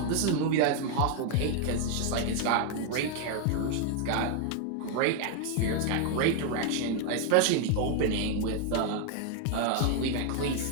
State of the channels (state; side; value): different; both; correlation 0.00